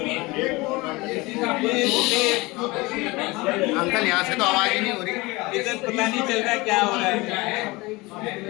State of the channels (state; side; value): quieter; right; 23.0 dB